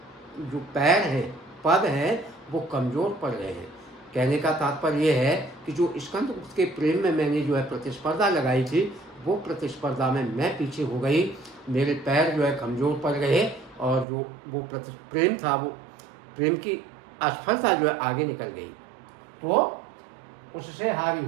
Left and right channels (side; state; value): left; drops out; at 14.1 s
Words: जो पैर हैं, पद हैं, वो कमज़ोर पड़ गए हैं। कहने का तात्पर्य ये है कि जो स्कंदगुप्त के प्रेम में मैंने जो है प्रतिस्पर्धा लगाई थी, वो प्रतिस्पर्धा में मैं पीछे हो गई, मेरे पैर जो है कमज़ोर पड़ गए और जो वो प्रेम था, वो प्रेम की असफलता जो है आगे निकल गई। तो उससे हारी